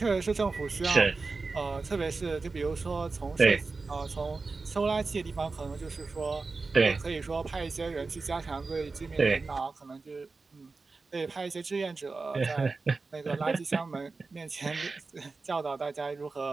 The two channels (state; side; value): quieter; left; 4.0 dB